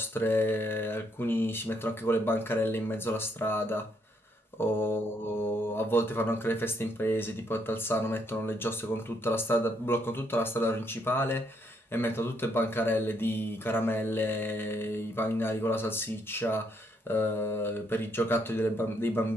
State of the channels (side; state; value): both; normal; correlation 0.73